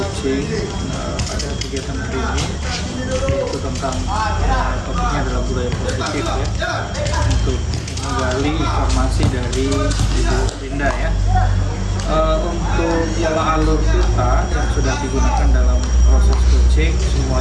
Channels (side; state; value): both; identical; correlation 1.00